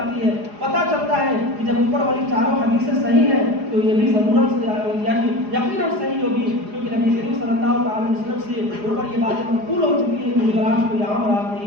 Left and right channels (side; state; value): left; late; 4.8 ms